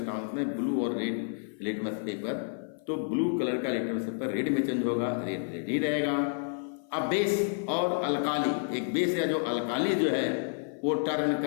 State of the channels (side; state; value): right; silent; 56 dB below the other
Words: में, ब्लू और रेड लिटमस पेपर, तो ब्लू कलर का लिटमस पेपर रेड में चेंज होगा, रेड ही रहेगा। अब बेस और अल्काली, एक बेस या जो अल्काली जो है वो टर्न